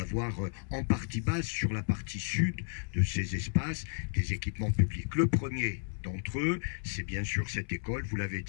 en partie base sur la partie sud de ces espaces des équipements publics. Le premier d'entre eux, c'est bien sûr cette école, vous l'avez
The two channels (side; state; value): right; silent; 56 dB below the other